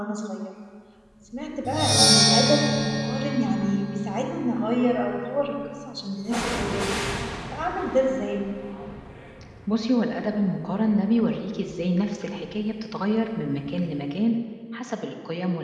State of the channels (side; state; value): both; identical; correlation 1.00